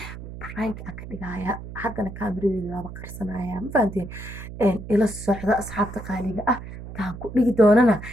prank aan ka dhigaaya haddana kaamiradeeda waaba qarsanaya ma fahanteen ila socda asxaabta qaaliga ah taan ku dhigi doonana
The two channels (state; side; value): noise; right; hum, 11 dB below the sound